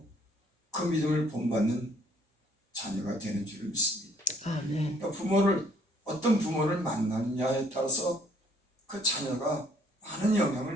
그 믿음을 본받는 자녀가 되는 줄 믿습니다. 아멘. 그러니까 어떤 부모를 만나느냐에 따라서 그 자녀가 많은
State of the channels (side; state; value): both; normal; correlation 0.62